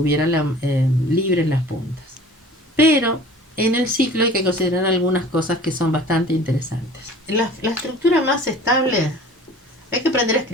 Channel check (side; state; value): both; normal; correlation 0.44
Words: libre en las puntas. Pero en el ciclo hay que considerar algunas cosas que son bastante interesantes. La estructura más estable hay que aprender a